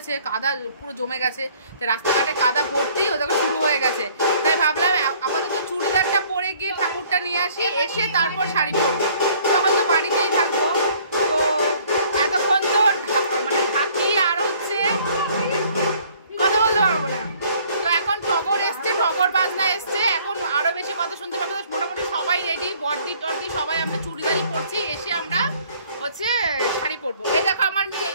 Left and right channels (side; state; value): both; inverted; correlation -0.58